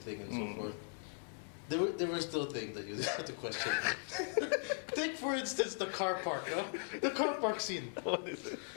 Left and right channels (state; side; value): silent; right; 52 dB below the other